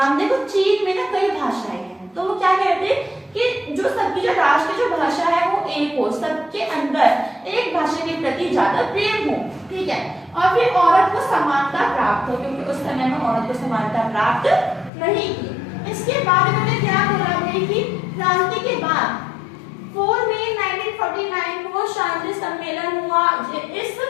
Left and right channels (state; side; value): drops out; right; at 14.9 s